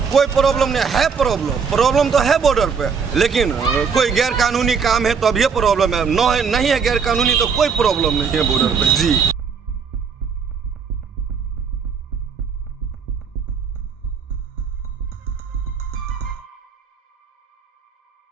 कोई प्रॉब्लम नहीं है। प्रॉब्लम तो है बॉर्डर पे, लेकिन कोई गैर कानूनी काम है तो अब ये प्रॉब्लम है। नहीं है गैर कानूनी तो कोई प्रॉब्लम नहीं है बॉर्डर पे जी।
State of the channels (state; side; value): quieter; left; 6.1 dB